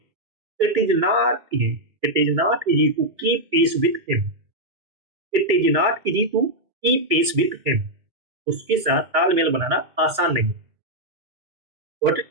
it is not easy, it is not easy to keep pace with him, it is not easy to keep pace with him, उसके साथ तालमेल बनाना आसान नहीं है। Got it?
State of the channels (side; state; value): left; late; 2.4 ms